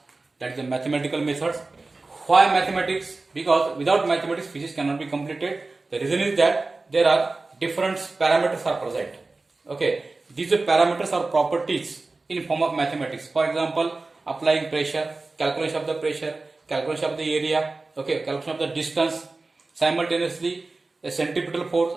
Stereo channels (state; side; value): quieter; left; 3.5 dB